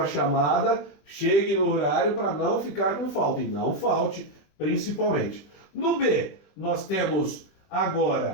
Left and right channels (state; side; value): late; right; 21 ms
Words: chamada, chegue no horário para não ficar com falta. E não falte, principalmente. No B, nós temos